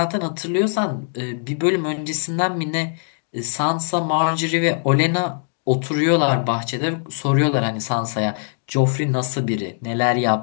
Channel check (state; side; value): silent; right; 62 dB below the other